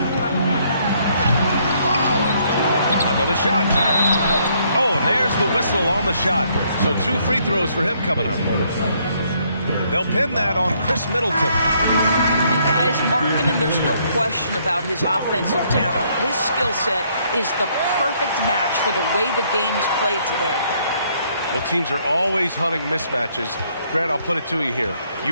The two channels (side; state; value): both; inverted; correlation -0.68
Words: Another shot. Oh, and there's the whistle on the shot. So 2 free throws for him coming up. They'll pin that on Chris Middleton. And guys, Markkanen, there's no question about his offensive talent. His skill set is the perfect match for the way the game is played today. Well, teams are always hunting mismatches. Grant, I'll put it to you here. You